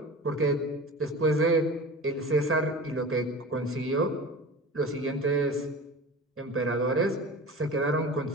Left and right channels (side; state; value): both; normal; correlation 0.34